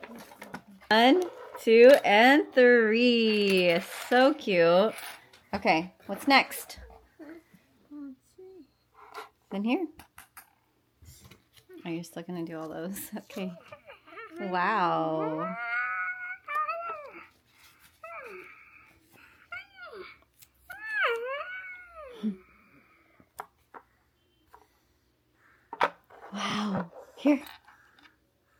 1, 2, and 3. So cute. Okay, what's next? In here. Oh, you're still gonna do all those. Okay. Wow. Wow. Here.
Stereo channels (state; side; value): identical; both; correlation 1.00